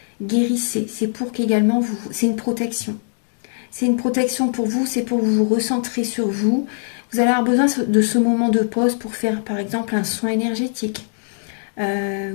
guérissez. C'est pour qu'également c'est une protection. C'est une protection pour vous, c'est pour vous recentrer sur vous. Vous allez avoir besoin de ce moment de pause pour faire par exemple un soin énergétique. Vous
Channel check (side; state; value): right; silent; digital silence